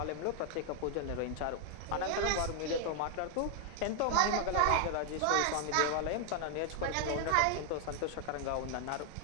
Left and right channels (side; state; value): both; different; correlation 0.00